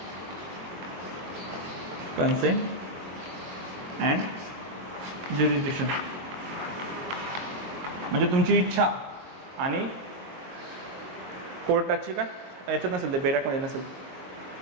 कन्सेंट अँड ज्युडिक्शन म्हणजे तुमची इच्छा आणि कोर्टाची काय याच्यात नसेल, ते बेरॅकमध्ये नसेल.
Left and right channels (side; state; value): left; late; 22 ms